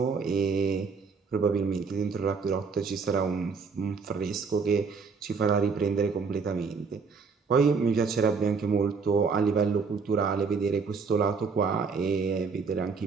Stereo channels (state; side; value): quieter; left; 5.1 dB